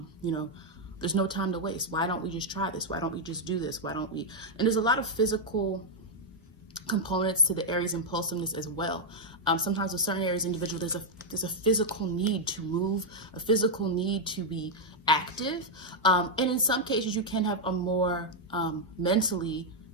there's no time to waste. Why don't we just try this? Why don't we just do this? Why don't we? And there's a lot of physical components to the Aries impulsiveness as well. Sometimes with certain Aries individuals, there's a physical need to move, a physical need to be active. And in some cases, you can have a more mentally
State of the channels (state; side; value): normal; both; correlation -0.02